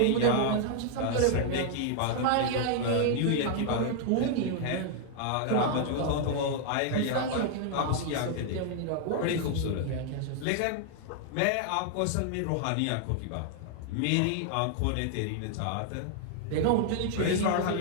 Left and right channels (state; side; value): different; both; correlation 0.00